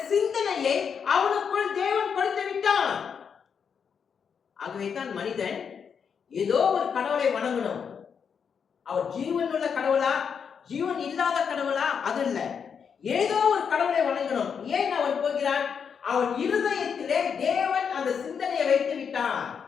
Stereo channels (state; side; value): quieter; right; 6.8 dB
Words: சிந்தனையை அவனுக்குள் தேவன் கொடுத்து விட்டான். ஆகவேதான் மனிதன் ஏதோ ஒரு கடவுளை வணங்கணும். அவர் ஜீவன் உள்ள கடவுளா, ஜீவன் இல்லாத கடவுளா, அது இல்ல, ஏதோ ஒரு கடவுளை வணங்கணும். ஏன் அவன் போகிறான்? அவன் இருதயத்திலே தேவன் அந்த சிந்தனையை வைத்து விட்டான்.